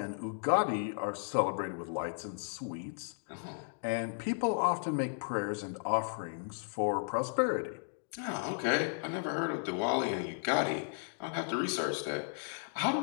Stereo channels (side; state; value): right; silent; digital silence